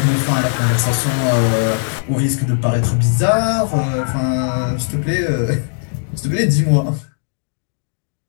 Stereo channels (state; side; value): silent; right; digital silence